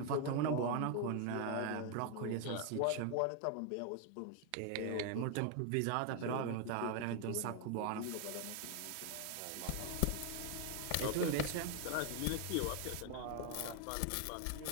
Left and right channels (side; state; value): both; different; correlation 0.01